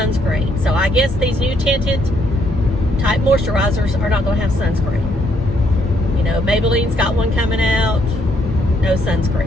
So I guess these new tinted type moisturizers are not going to have sunscreen. You know, Maybelline's got one coming out. No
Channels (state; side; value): normal; both; correlation 0.71